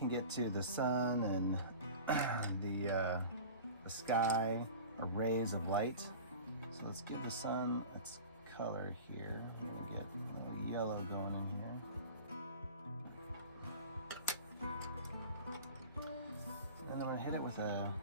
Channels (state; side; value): inverted; both; correlation -0.37